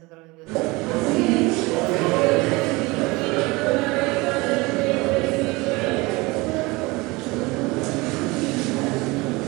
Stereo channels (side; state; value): left; quieter; 23.5 dB